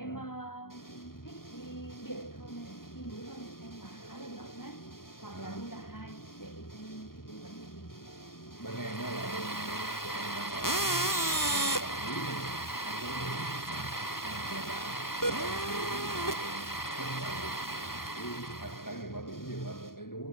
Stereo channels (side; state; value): right; late; 0.92 ms